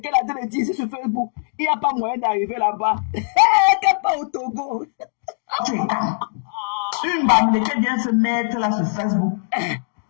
a dit ici sur Facebook. Il n'y a pas moyen d'arriver là-bas. Qu'elle pas au Togo. Une bamileke vient se mettre là sur Facebook.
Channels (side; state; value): right; silent; digital silence